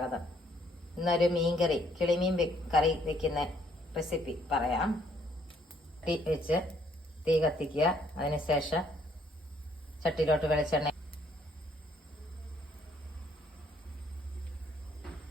ഇന്നൊരു മീൻകറി, കിളിമീൻ കറി വെക്കുന്ന റെസിപ്പി പറയാം. തീ കത്തിക്കുക. അതിനുശേഷം ചട്ടിയിലോട്ട് വെളിച്ചെണ്ണ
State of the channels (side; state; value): both; normal; correlation 0.66